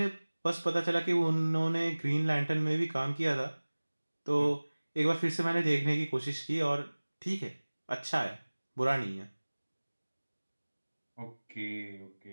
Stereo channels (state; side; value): inverted; both; correlation -1.00